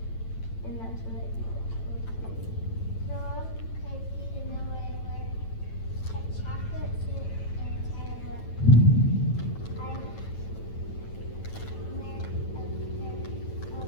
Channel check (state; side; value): late; right; 9.0 ms